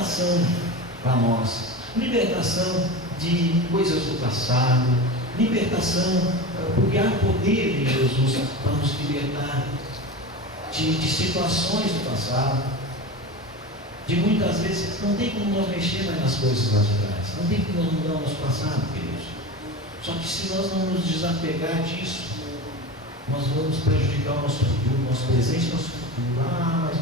para nós, libertação de coisas do passado, libertação, porque há poder em Jesus para nos libertar de situações do passado, de muitas vezes. Não tem como nós mexer mais nas coisas lá de trás, não tem como nós mudar o nosso passado, queridos. Só que se nós não nos desapegar disso, nós vamos prejudicar o nosso futuro, nosso presente e nosso futuro. Ah,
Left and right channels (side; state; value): both; normal; correlation 0.28